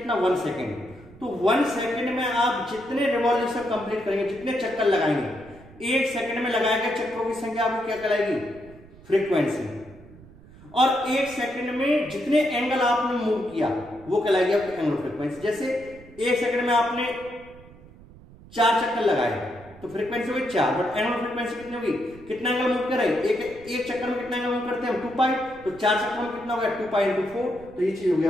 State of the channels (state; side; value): noise; right; rumble, 21 dB below the sound